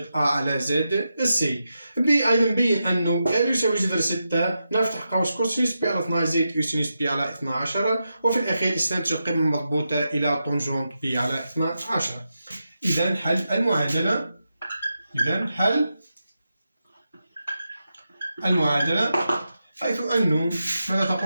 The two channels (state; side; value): inverted; both; correlation -0.88